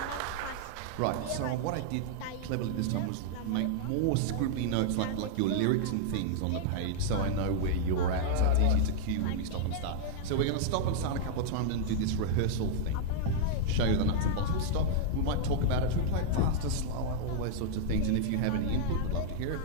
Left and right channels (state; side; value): different; both; correlation -0.01